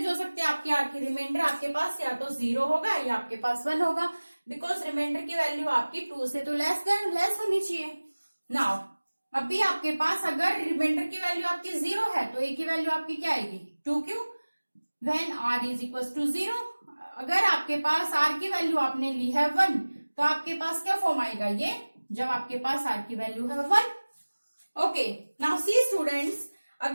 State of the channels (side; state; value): both; inverted; correlation -1.00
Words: हो सकती है आपकी आर की. रिमाइंडर आपके पास या तो 0 होगा या आपके पास 1 होगा, बिकॉज रिमाइंडर की वैल्यू आपकी 2 से तो लेस होनी चाहिए. नाउ अभी आपके पास अगर रिमाइंडर की वैल्यू आपकी 0 है तो ए की वैल्यू आपकी क्या आएगी 2q when R is equal to 0. अगर आपके पास आर की वैल्यू आपने ली है 1, तो आपके पास क्या फॉर्म आएगा ये, जब आपके पास आर की वैल्यू है 1. ओके, नाउ सी स्टूडेंट्स,